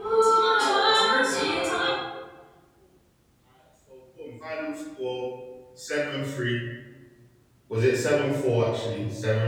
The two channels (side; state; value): both; identical; correlation 1.00